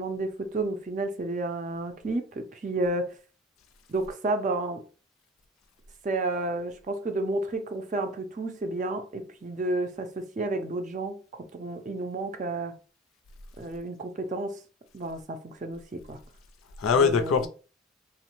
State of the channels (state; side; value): normal; both; correlation 0.32